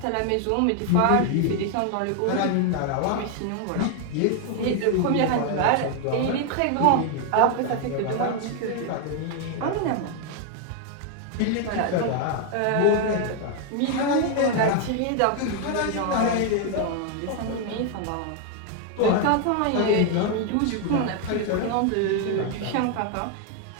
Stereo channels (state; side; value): different; both; correlation 0.00